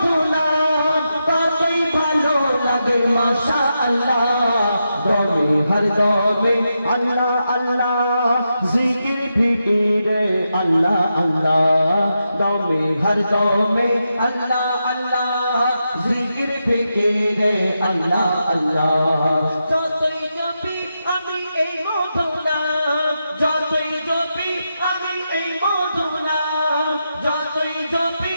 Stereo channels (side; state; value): both; inverted; correlation -0.86